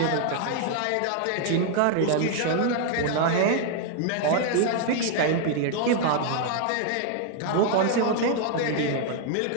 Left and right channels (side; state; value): both; different; correlation 0.00